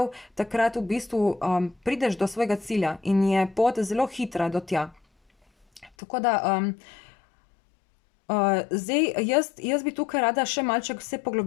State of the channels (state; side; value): drops out; right; at 5.9 s